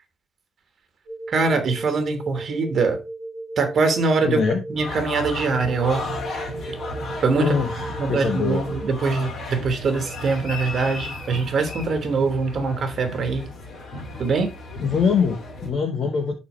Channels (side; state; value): both; normal; correlation 0.71